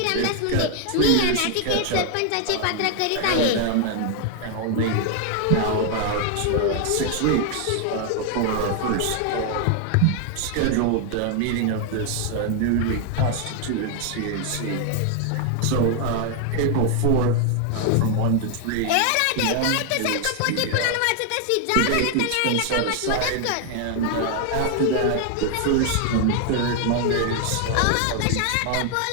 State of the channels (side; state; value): both; different; correlation 0.00